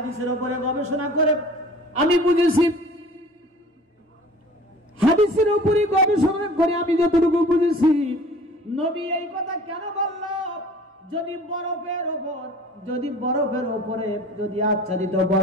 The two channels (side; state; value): both; normal; correlation 0.47